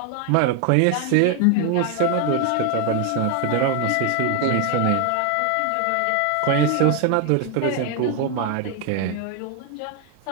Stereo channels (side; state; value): both; different; correlation 0.01